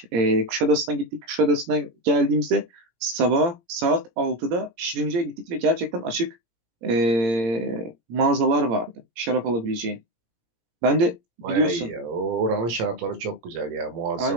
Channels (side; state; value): left; late; 17 ms